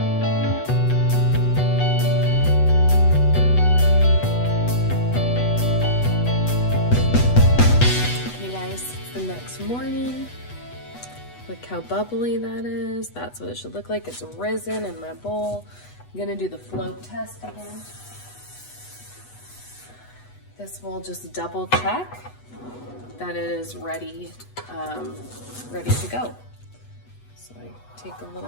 Okay guys, it's the next morning. Look how bubbly that is. That's what it should look like. It's risen in my bowl. I'm gonna do the float test again. This will just double check that it is ready, ready to go. So I take a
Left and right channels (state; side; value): late; right; 8.2 ms